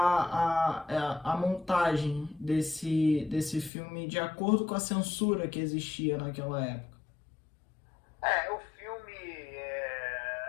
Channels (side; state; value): right; drops out; at 3.7 s